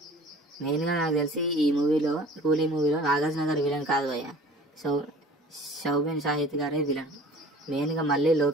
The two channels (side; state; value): both; normal; correlation 0.46